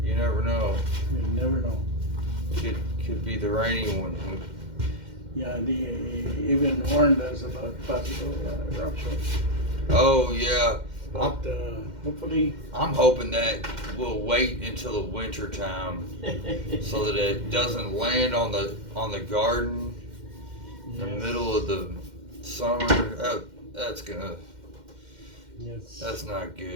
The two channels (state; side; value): late; left; 2.1 ms